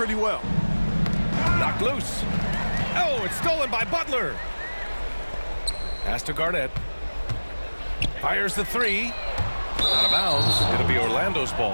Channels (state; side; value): inverted; both; correlation -1.00